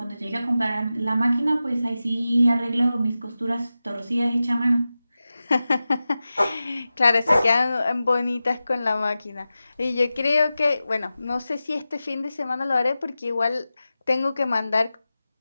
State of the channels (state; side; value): inverted; both; correlation -0.94